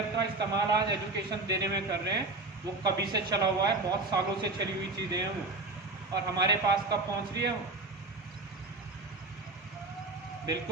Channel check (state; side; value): quieter; left; 3.3 dB